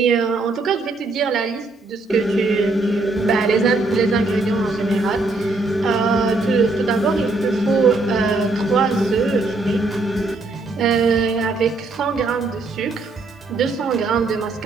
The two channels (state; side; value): quieter; left; 3.3 dB